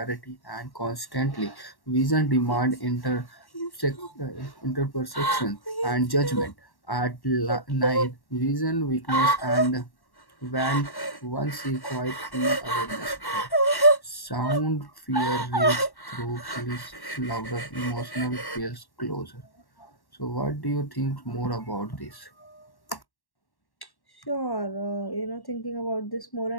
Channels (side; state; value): right; late; 1.1 ms